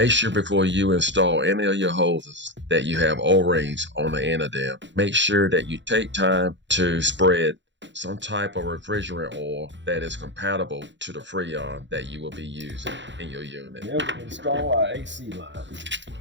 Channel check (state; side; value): late; left; 0.53 ms